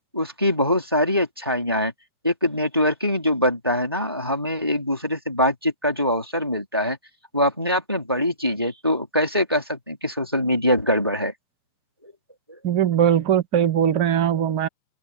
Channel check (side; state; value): both; inverted; correlation -0.42